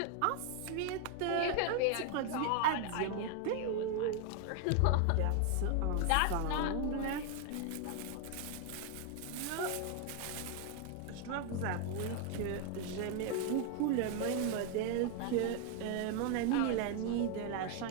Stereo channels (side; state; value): both; different; correlation 0.00